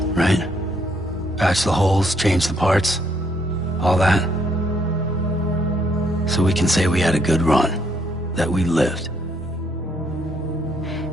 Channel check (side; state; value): both; normal; correlation 0.70